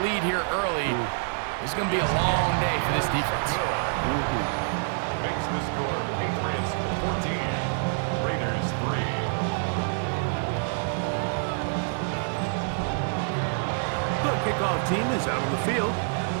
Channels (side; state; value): left; silent; 60 dB below the other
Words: lead here early, it's going to be a long day for this defense. Makes the score Patriots 14, Raiders 3. The kickoff team is out on the field,